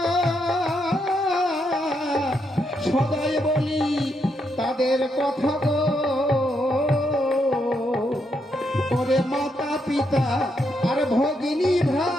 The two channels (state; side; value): normal; both; correlation 0.79